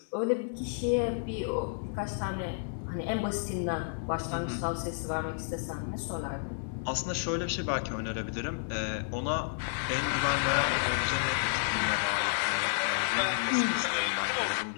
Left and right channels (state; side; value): silent; right; 55 dB below the other